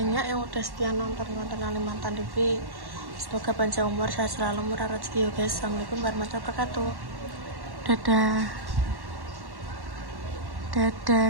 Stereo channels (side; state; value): left; late; 1.1 ms